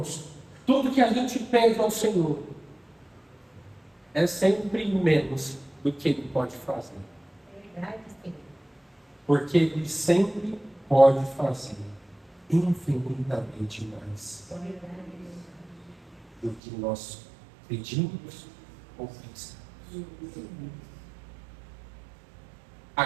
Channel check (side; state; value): left; drops out; at 16.6 s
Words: tudo que a gente pede ao Senhor, é sempre menos do que Ele pode fazer. Porque Ele sempre pode fazer infinitamente mais do que nós pedimos ou pensamos. A